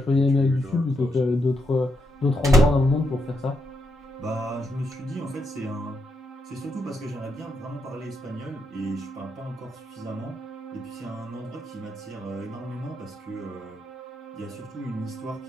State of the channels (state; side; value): normal; both; correlation 0.80